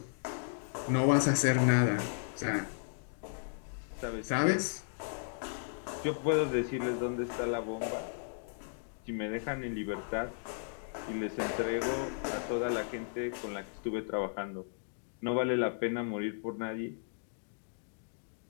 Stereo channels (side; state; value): right; silent; digital silence